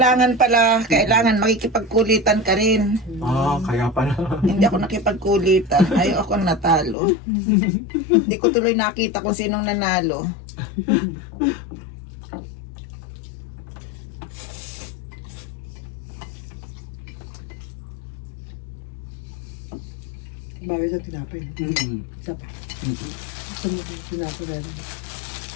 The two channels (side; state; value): right; drops out; at 7.0 s